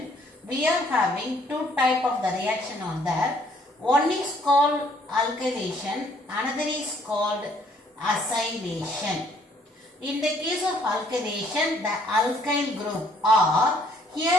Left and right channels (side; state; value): both; normal; correlation 0.63